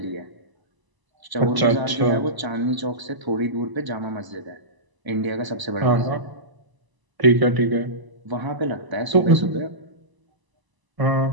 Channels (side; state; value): left; late; 1.0 ms